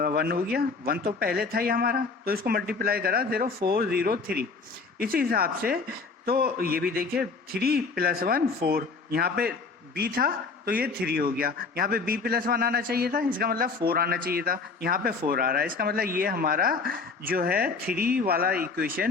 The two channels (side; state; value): right; quieter; 4.6 dB